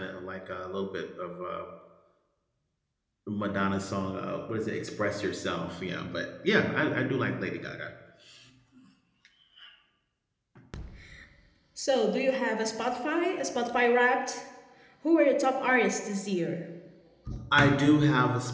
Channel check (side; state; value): both; identical; correlation 1.00